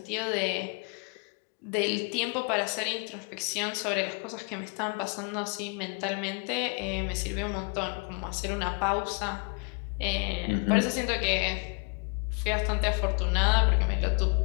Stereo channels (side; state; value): right; quieter; 33.3 dB